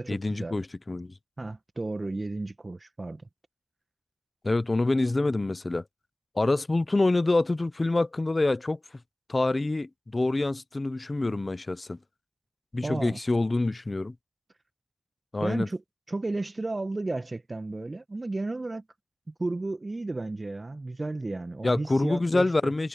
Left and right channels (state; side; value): normal; both; correlation 0.98